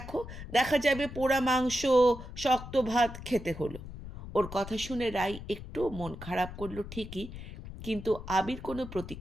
দেখা যাবে পোড়া মাংস, শক্ত ভাত খেতে হলো। ওর কথা শুনে রাই একটু মন খারাপ করলো ঠিকই, কিন্তু আবির কোনো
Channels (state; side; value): noise; left; rumble, 12 dB below the sound